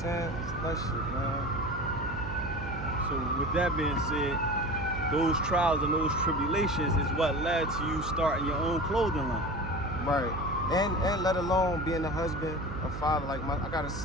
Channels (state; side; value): noise; right; hum, 8 dB below the sound